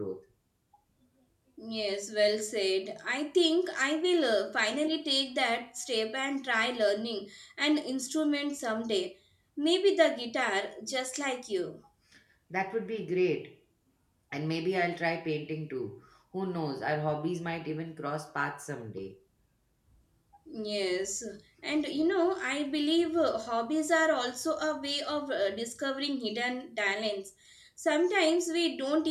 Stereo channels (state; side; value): identical; both; correlation 1.00